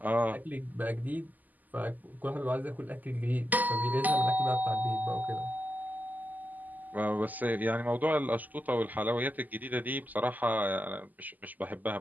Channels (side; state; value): left; late; 0.082 ms